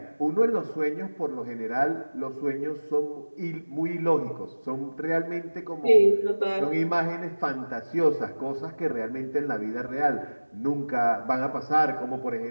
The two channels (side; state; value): both; inverted; correlation -1.00